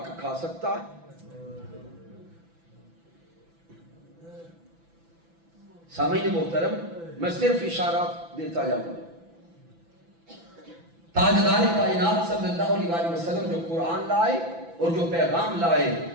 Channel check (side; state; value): left; late; 6.0 ms